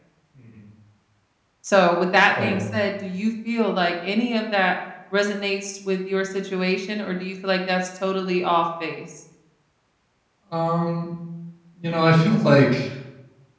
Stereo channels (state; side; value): identical; both; correlation 1.00